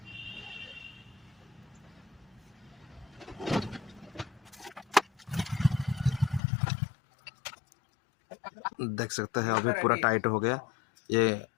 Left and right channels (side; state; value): right; drops out; at 6.4 s